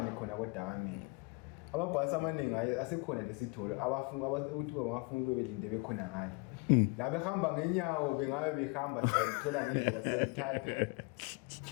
khona koDakamele amabhasi amaningi asekhona lesitholo ukuthi bangafuna bebelinde bekhona ngale la behamba ngenyawo bengabe behamba sithola ngendlela selithatha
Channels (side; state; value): right; quieter; 28.2 dB